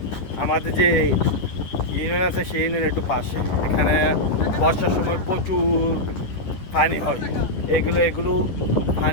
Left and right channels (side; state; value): right; late; 10 ms